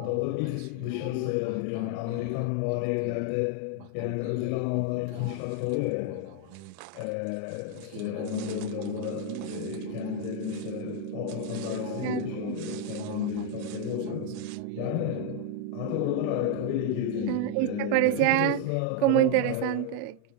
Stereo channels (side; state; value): both; different; correlation 0.01